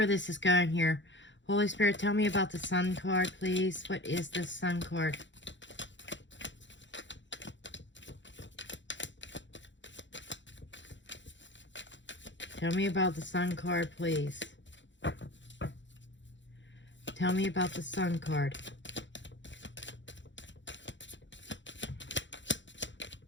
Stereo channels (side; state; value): right; late; 0.54 ms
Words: this is going here. Holy Spirit, tell me about the Sun card, please. What is this Sun card? Tell me about the Sun card, please. Tell me about the Sun card.